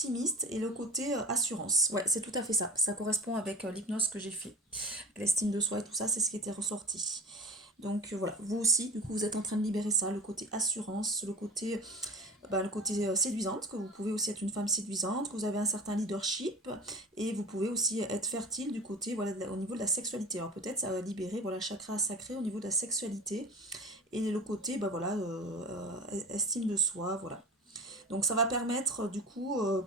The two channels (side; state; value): both; normal; correlation 0.34